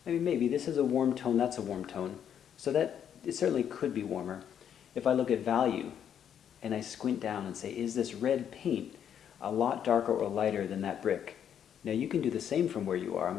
I mean, maybe. This is a warm tone, that's a warm tone. So that it certainly could be warmer. If I look at value and I squint down and say, is this red paint a lot darker or lighter than that brick? Now you can do the same from where you are. I'm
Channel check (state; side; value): quieter; right; 9.0 dB